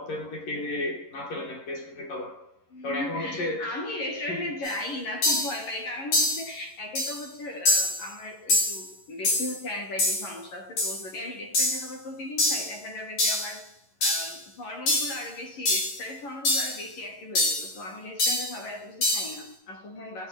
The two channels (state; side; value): late; right; 11 ms